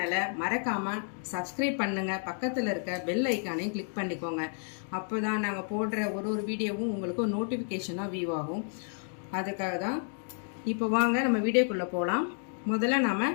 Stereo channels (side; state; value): right; silent; 57 dB below the other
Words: மறக்காம சப்ஸ்கிரைப் பண்ணுங்க. பக்கத்தில் இருக்க பெல் ஐக்கானையும் கிளிக் பண்ணிக்கோங்க. அப்போதான் நாங்கள் போடுற ஒரு வீடியோவும் உங்களுக்கு நோட்டிஃபிகேஷனாக வியூ ஆகும். அதுக்காக தான். இப்போ வாங்க நம்ம வீடியோக்குள்ளே போகலாம். முதல்ல நாம